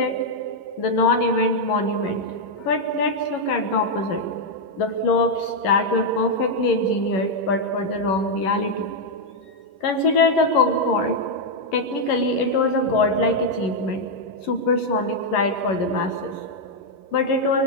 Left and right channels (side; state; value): right; late; 11 ms